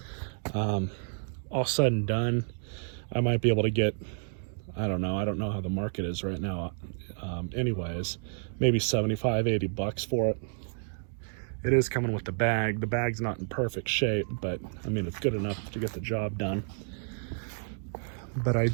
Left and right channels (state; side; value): silent; left; 58 dB below the other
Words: All said and done, I might be able to get, I don't know how the market is right now. Anyways, maybe 75, 80 bucks for it. It is coming with the bag. The bag's not in perfect shape, but I mean, it's good enough to get the job done. But I